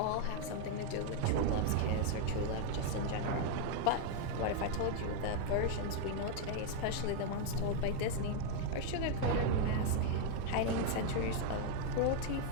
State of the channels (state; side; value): different; both; correlation 0.00